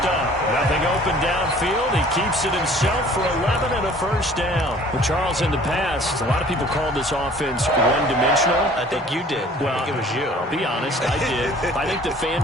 Nothing open downfield. He keeps it himself for 11 and a 1st down. Well, Charles, in the past, a lot of people called this offense one-dimensional. I think you did. Well, I think it was you. I'll be honest, I did. I think the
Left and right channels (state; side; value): normal; both; correlation 0.51